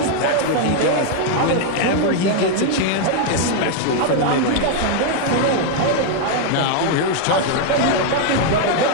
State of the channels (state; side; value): different; both; correlation 0.00